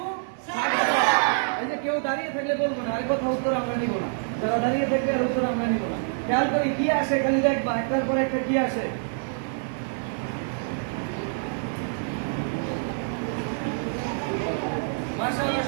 এই যে কেউ দাঁড়িয়ে থাকলে বলবো না, আরেক কথা উত্তর আমরা নিব না। যারা দাঁড়িয়ে থাকবে আর উত্তর আমরা নিব না। খেয়াল করি কি আসে, খালি দেখবা একটার পর একটা কি আসে। মাশাআল্লাহ,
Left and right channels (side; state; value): left; silent; digital silence